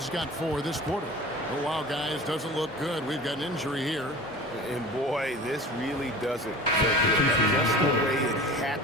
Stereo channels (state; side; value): normal; both; correlation 0.38